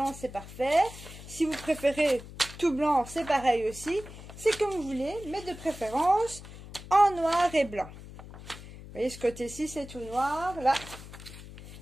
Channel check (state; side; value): noise; left; hum, 15 dB below the sound